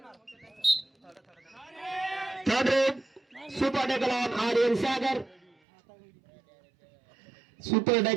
Third raid super tackle on Aryan Sagar. Super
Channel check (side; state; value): left; drops out; at 5.6 s